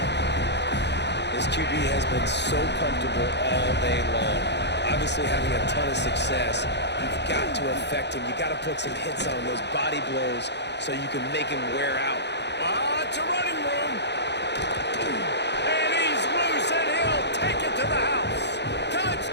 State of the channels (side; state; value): right; late; 0.50 ms